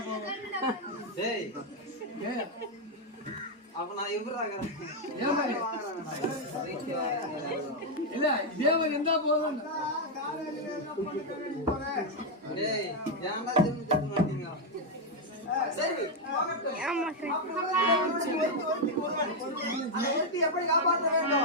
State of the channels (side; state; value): both; normal; correlation 0.01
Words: போகும். அப்ப நான் எவ்வளவு இல்ல தேவன் எந்த போதும் எப்படி காப்பாற்ற